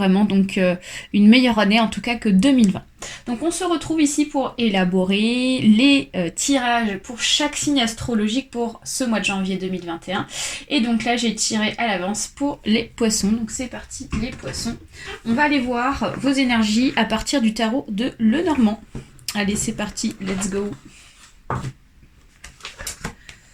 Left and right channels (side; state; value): both; identical; correlation 1.00